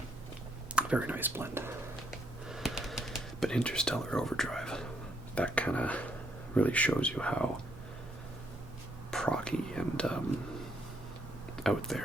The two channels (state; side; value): normal; both; correlation 0.72